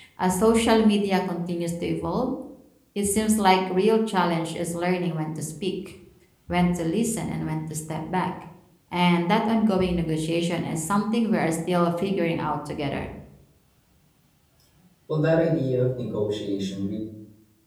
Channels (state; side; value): identical; both; correlation 1.00